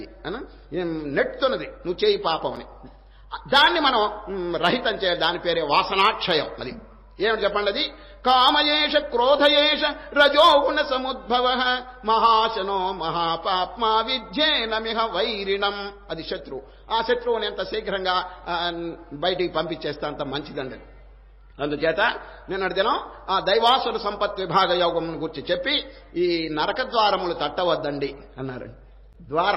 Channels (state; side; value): identical; both; correlation 1.00